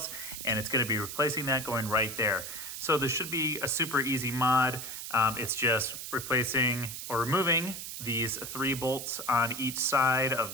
And it's going to be replacing that, going right there. So this should be a super easy mod. It's just replacing or removing these 3 bolts on each side of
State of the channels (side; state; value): right; noise; hiss, 8 dB below the sound